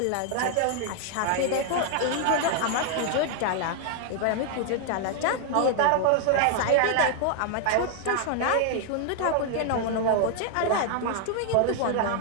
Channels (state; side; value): different; both; correlation 0.00